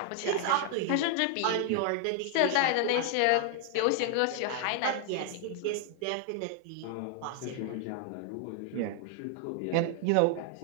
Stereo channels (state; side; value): different; both; correlation 0.00